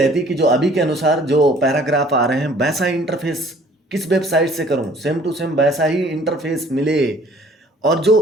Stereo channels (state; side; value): normal; both; correlation 0.55